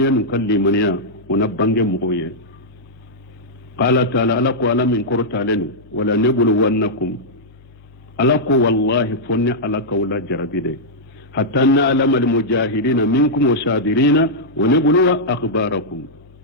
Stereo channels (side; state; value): left; noise; hum, 26 dB below the sound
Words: ينكال لمن يا ونبانge مغوية قال تعالى ألاكو ألا من كورتالين ولا نبلونكم ألاكو والله فني ألاكو لا جربيدي حتى نعلم المجاهدين منكم وصابرين ونبلو أخباركم